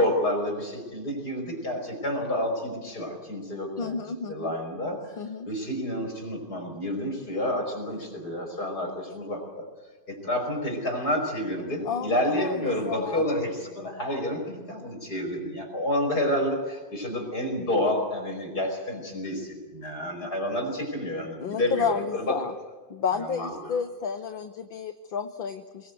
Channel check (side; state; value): right; late; 2.5 ms